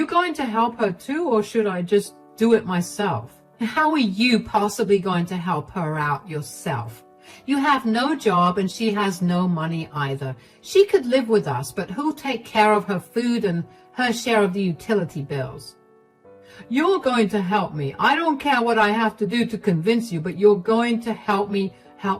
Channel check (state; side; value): identical; both; correlation 1.00